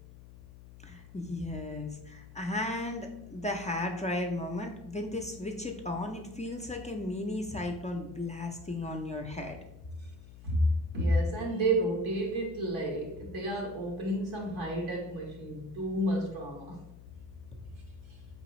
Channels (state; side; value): noise; left; hum, 16 dB below the sound